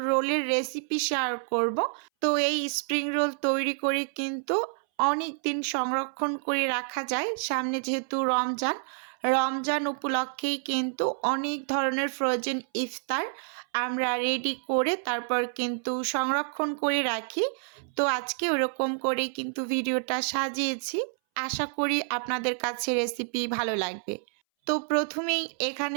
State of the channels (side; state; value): left; silent; 59 dB below the other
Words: রোলের রেসিপি শেয়ার করব। তো এই স্প্রিং রোল তৈরি করে কিন্তু অনেক দিন সংরক্ষণ করে রাখা যায়। সামনে যেহেতু রমজান উপলক্ষেই কিন্তু অনেক ধরনের ফ্রোজেন ইফতার আমরা রেডি করে তারপর কিন্তু সংরক্ষণ করে রাখি। তো আজকে ওরকম করেই কিন্তু ভিডিওটা সাজিয়েছি। আশা করি আপনাদের কাছে রেসিপি ভালো লাগবে। তো প্রথমেই